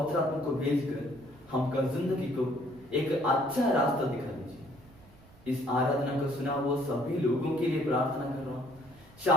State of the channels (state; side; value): noise; right; rumble, 25 dB below the sound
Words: आत्मा को भेजकर हमका जिंदगी को एक अच्छा रास्ता दिखा दीजिए। इस आराधना को सुना हुआ सभी लोगों के लिए प्रार्थना कर रहा हूँ,